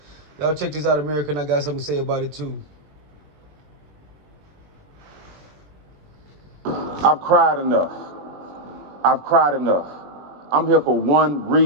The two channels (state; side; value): late; left; 21 ms